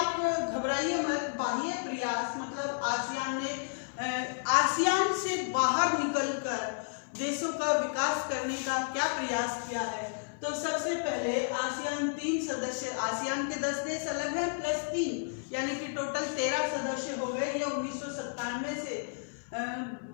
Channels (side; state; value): right; silent; 57 dB below the other